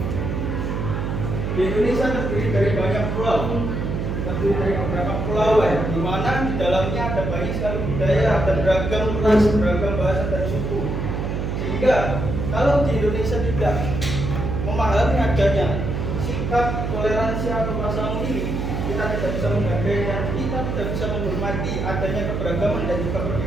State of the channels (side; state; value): right; noise; hum, 2 dB below the sound